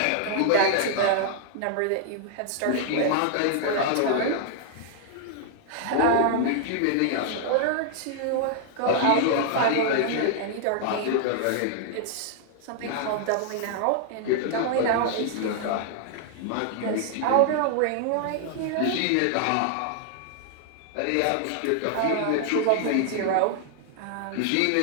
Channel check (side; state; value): both; different; correlation -0.01